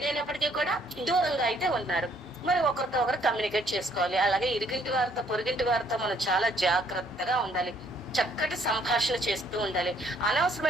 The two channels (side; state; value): both; normal; correlation 0.65